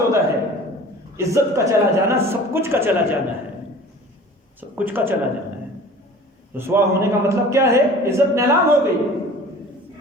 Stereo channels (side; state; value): both; normal; correlation 0.43